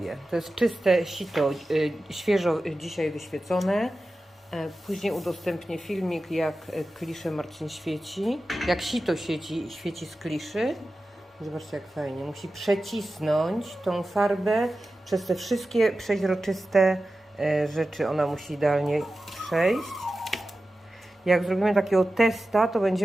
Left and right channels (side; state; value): both; normal; correlation 0.94